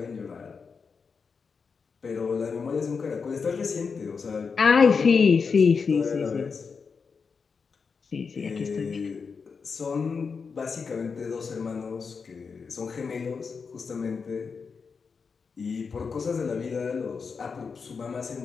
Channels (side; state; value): right; quieter; 5.4 dB